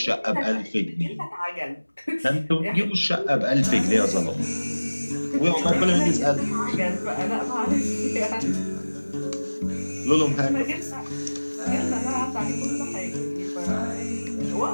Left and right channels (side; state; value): both; inverted; correlation -1.00